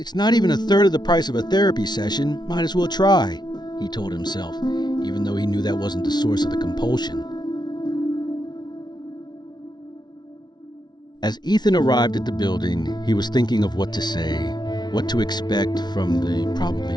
not even a third of the price of a therapy session, might as well try, he told himself, even though he knew that wasn't the source of the compulsion. As Ethan arrived at the building, he was thinking of what to say, what to expect from the probably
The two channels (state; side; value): late; right; 0.20 ms